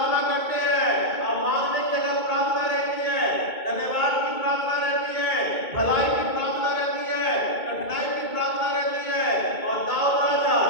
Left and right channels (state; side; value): late; right; 2.2 ms